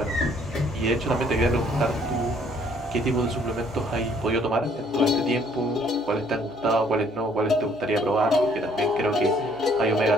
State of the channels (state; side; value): normal; both; correlation 0.62